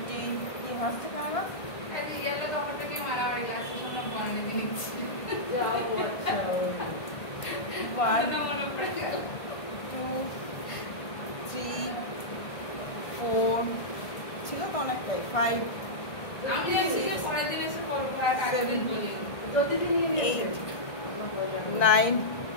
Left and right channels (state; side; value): late; right; 1.5 ms